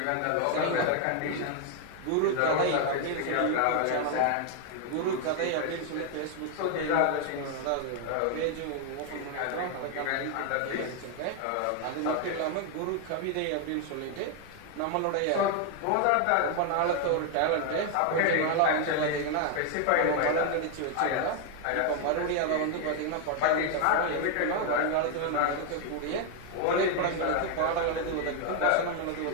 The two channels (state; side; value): different; both; correlation 0.00